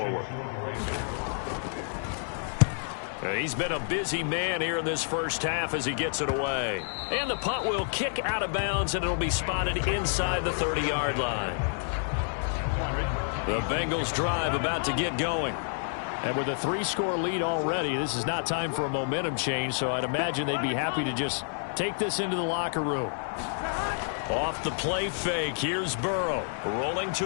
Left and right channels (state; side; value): silent; right; digital silence